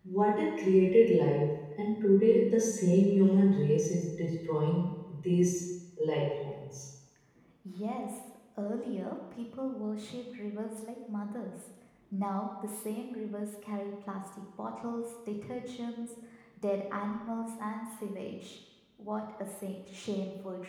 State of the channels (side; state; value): both; identical; correlation 1.00